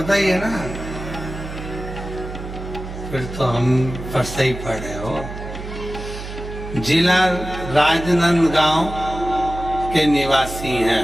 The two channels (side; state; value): right; noise; hum, 10 dB below the sound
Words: ही है ना? फिर तो हम पर सही पढ़े हो। जिला राजनांदगांव के निवासी